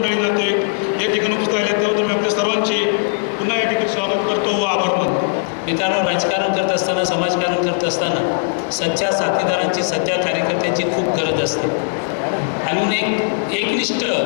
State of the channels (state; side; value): silent; right; digital silence